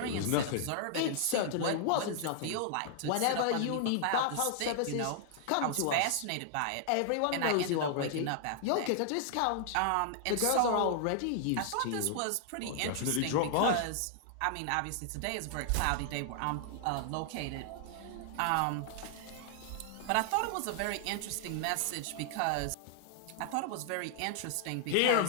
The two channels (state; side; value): different; both; correlation 0.00